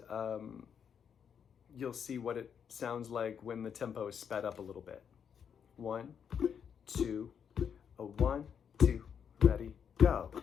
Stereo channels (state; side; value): quieter; right; 7.5 dB